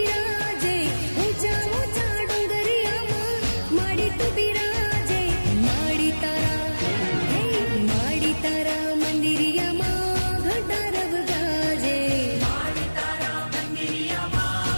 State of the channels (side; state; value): both; inverted; correlation -1.00